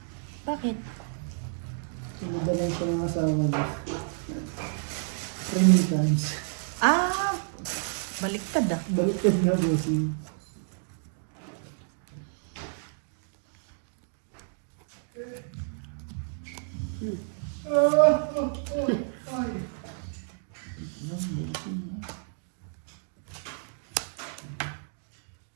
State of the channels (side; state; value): left; silent; digital silence